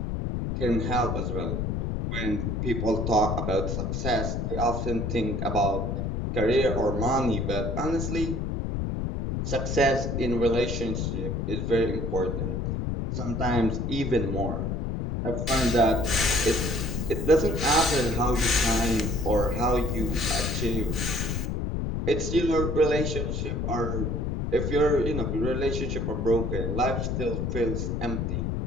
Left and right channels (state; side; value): noise; left; rumble, 1 dB below the sound